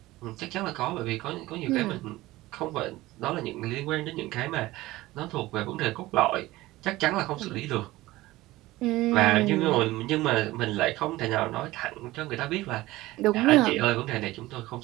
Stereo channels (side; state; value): left; quieter; 18.1 dB